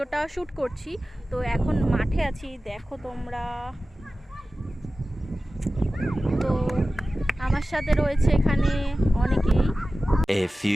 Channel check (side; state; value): both; normal; correlation 0.95